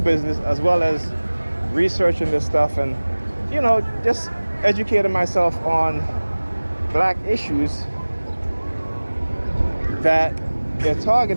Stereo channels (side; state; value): both; inverted; correlation -1.00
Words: business as well as researching this stuff and, just educating myself on black issues, that their